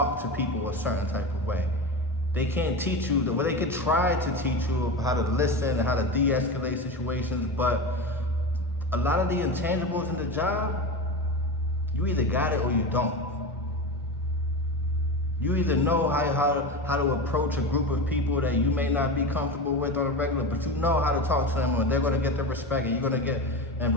to people a certain type of way. They can't teach you, well, they could try to teach you how to listen and how to de-escalate situations, but a lot of the intangibles in the job, you either got it or you don't. You either know how to approach a group of people that you may not be comfortable with on a regular, but you know how to talk to them, or they're gonna get their respect, and you're gonna get, and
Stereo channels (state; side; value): normal; both; correlation 0.24